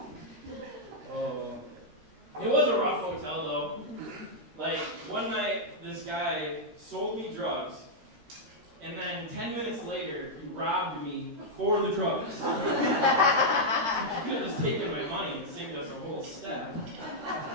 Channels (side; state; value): left; late; 13 ms